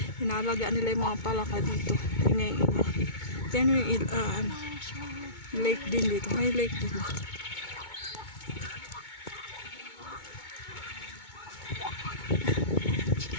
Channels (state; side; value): late; right; 2.2 ms